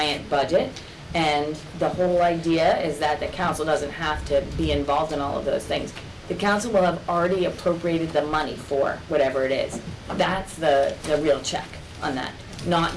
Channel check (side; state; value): both; identical; correlation 1.00